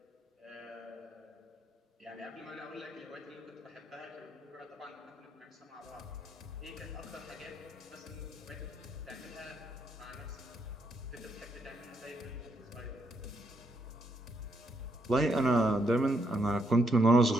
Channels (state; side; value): normal; both; correlation 0.76